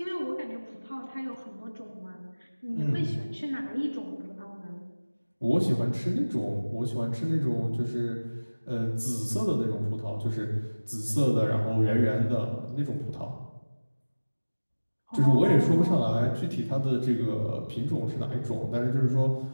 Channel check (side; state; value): both; inverted; correlation -1.00